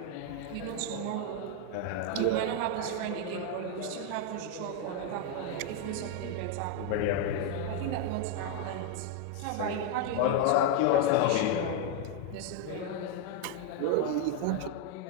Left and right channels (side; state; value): both; different; correlation 0.01